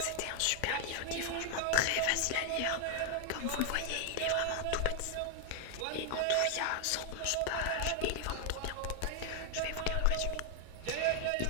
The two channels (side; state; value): both; different; correlation 0.00